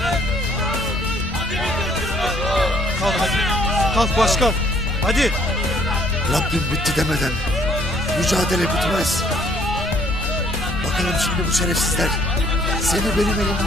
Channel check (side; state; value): both; normal; correlation 0.63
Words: Kalk hadi. Kalk başkan. Hadi. Rabbim bitti demeden mücadele bitmez. Bakalım şimdi bu şerefsizler seni benim